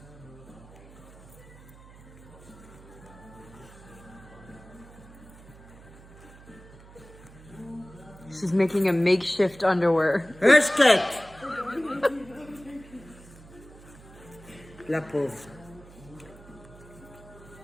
She's making a makeshift underwear. Skate. La pauvre.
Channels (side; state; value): right; noise; hum, 20 dB below the sound